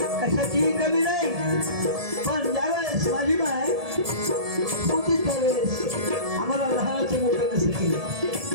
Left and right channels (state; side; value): late; left; 1.7 ms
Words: कशाचीही कमी नाही. पण ज्यावेळेस माझी माय होती त्यावेळेस आम्हाला लहानाचं मोठं कसं केलं.